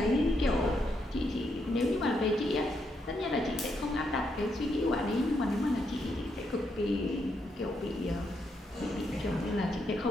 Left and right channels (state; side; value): normal; both; correlation 0.79